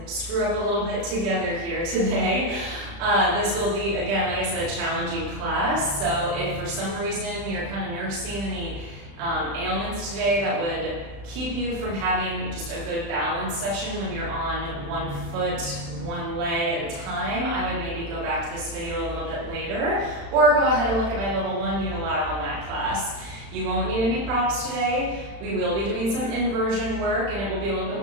screw up a little bit together here today. This will be, again, like I said, a challenging class. So if for some reason you're kind of nursing any ailments today that would keep you from having just a good balance session when you're on one foot, one leg at a time, I would maybe go back to this video a little bit later, or go ahead and look at my level 1 unilateral mat class. You won't need any props today. We will be doing some inversion work, and it will be a little bit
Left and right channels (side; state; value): left; late; 35 ms